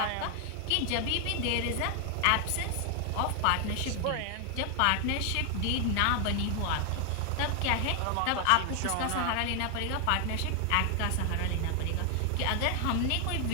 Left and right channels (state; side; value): different; both; correlation 0.00